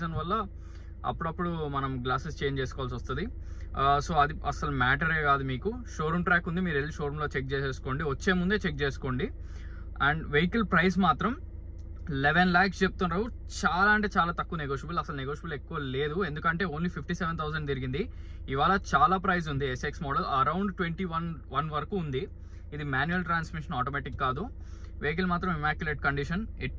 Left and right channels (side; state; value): both; identical; correlation 1.00